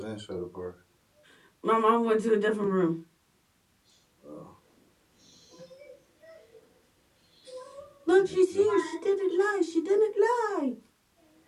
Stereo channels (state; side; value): identical; both; correlation 1.00